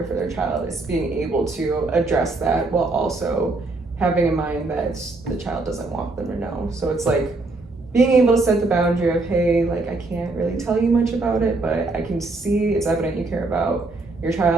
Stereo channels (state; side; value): quieter; left; 3.3 dB